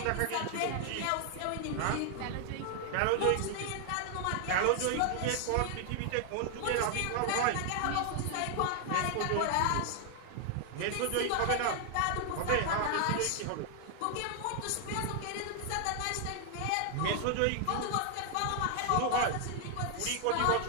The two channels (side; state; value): both; different; correlation 0.00